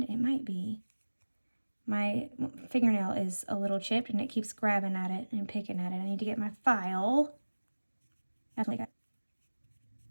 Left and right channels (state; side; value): inverted; both; correlation -1.00